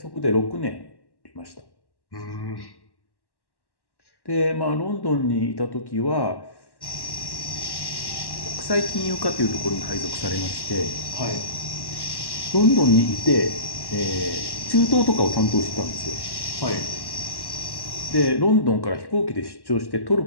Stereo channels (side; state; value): right; late; 1.1 ms